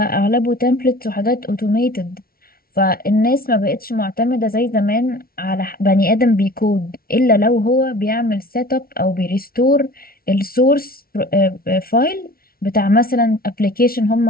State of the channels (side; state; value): right; late; 0.43 ms